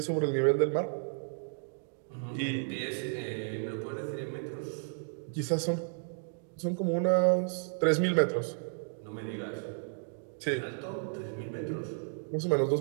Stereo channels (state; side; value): silent; left; digital silence